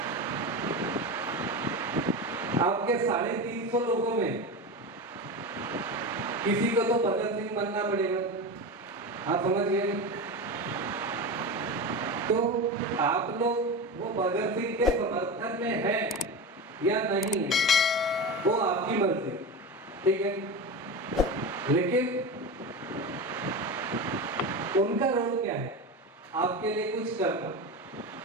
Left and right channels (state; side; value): normal; both; correlation 0.23